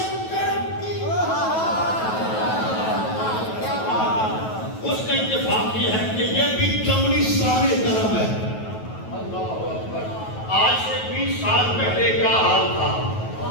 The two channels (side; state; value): right; late; 9.3 ms